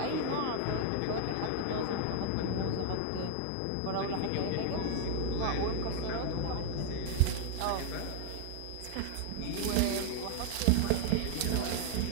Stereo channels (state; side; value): different; both; correlation 0.00